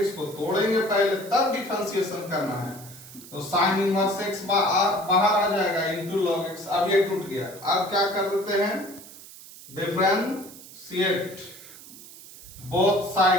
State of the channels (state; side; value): noise; right; hiss, 17 dB below the sound